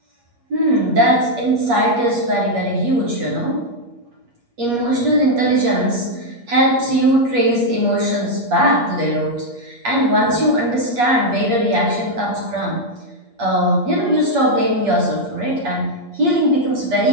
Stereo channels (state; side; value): late; left; 8.4 ms